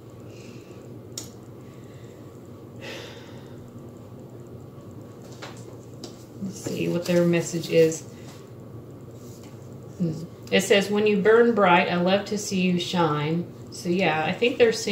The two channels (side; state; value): both; identical; correlation 1.00